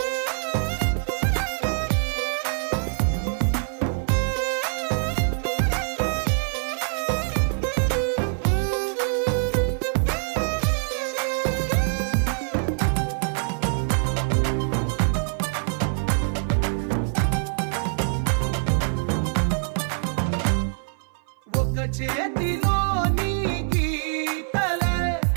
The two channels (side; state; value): left; silent; 57 dB below the other